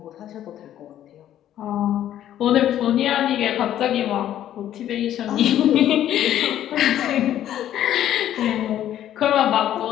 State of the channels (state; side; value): quieter; right; 11.6 dB